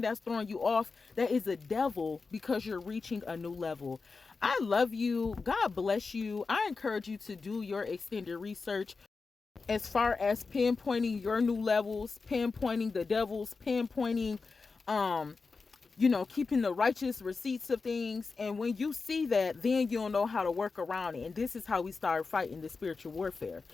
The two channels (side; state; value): right; quieter; 4.4 dB